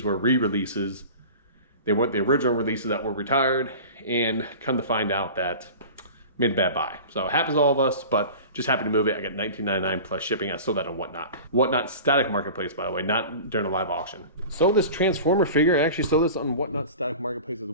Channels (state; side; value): inverted; both; correlation -0.36